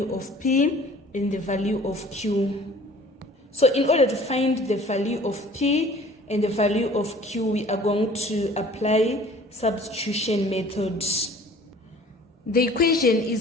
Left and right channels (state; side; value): normal; both; correlation 0.50